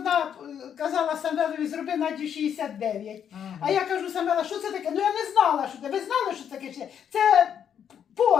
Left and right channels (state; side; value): quieter; right; 8.6 dB